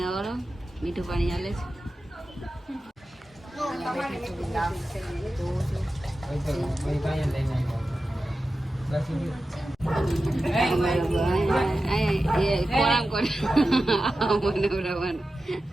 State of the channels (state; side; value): normal; both; correlation 0.93